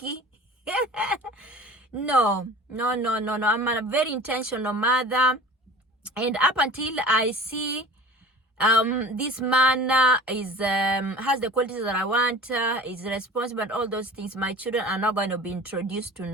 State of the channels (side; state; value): both; normal; correlation 0.40